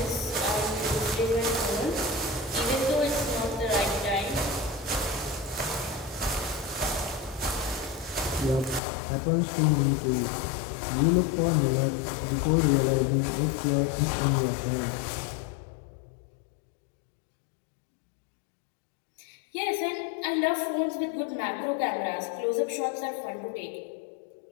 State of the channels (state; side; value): drops out; right; at 8.8 s